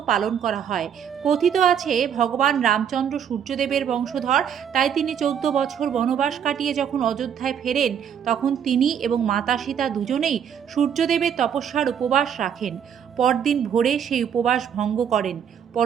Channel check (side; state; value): left; quieter; 8.4 dB